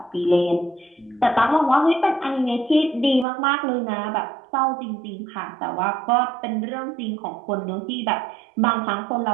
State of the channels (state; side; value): drops out; left; at 3.2 s